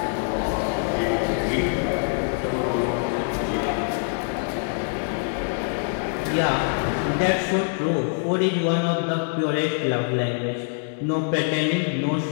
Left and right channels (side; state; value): right; silent; digital silence